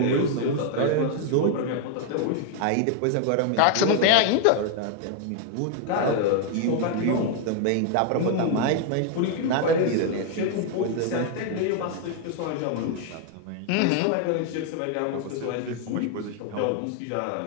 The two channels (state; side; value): different; both; correlation 0.00